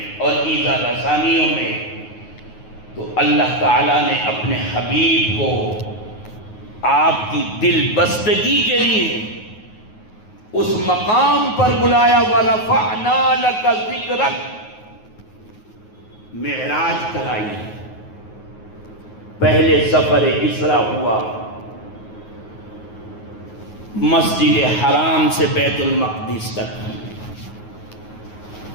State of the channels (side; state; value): right; late; 9.4 ms